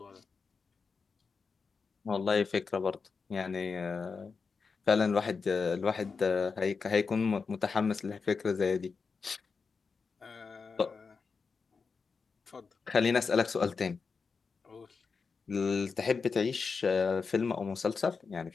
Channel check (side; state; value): right; quieter; 5.0 dB